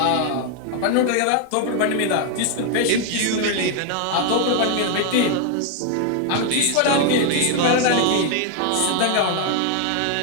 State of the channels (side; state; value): both; different; correlation 0.01